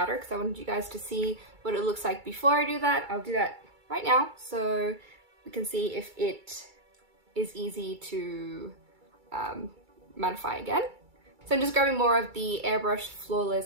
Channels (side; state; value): left; late; 2.3 ms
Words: because I wanted you guys to see what it looks like before I do that. I'll do that right now so we can see if it is easy to mattify again. So I'm just grabbing more of the Airbrush